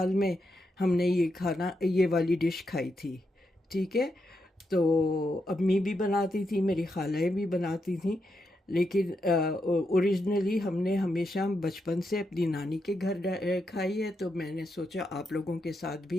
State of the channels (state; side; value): normal; both; correlation 0.83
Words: में हमने ये वाली डिश खाई थी, ठीक है। तो अम्मी भी बनाती थी, मेरी खालाएँ भी बनाती थी, लेकिन ओरिजिनली हमने हमेशा बचपन से अपनी नानी के घर खाई है। तो मैंने सोचा आप लोगों के साथ